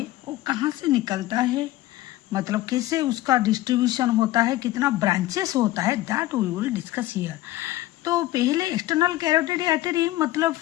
वो कहाँ से निकलता है, मतलब कैसे उसका डिस्ट्रीब्यूशन होता है, कितना ब्रांचेस होता है, that we will discuss here. तो पहले एक्सटर्नल कैरोटिड आर्टरी मतलब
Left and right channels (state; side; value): quieter; right; 16.3 dB